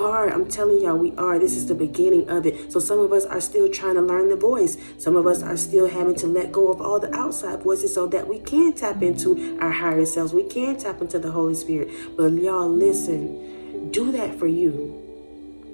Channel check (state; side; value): inverted; both; correlation -1.00